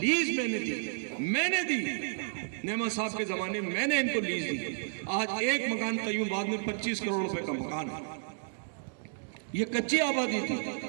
میں نے دی. نعمت صاحب کے زمانے میں نے ان کو لیز دی. آج ایک مکان قیوم بعد میں 25 کروڑ روپے کا مکان ہے. یہ کچی آبادی تھی.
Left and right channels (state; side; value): silent; left; digital silence